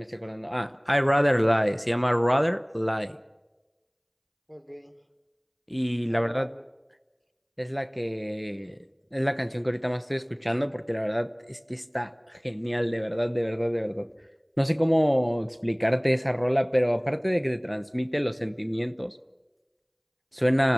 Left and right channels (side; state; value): both; identical; correlation 1.00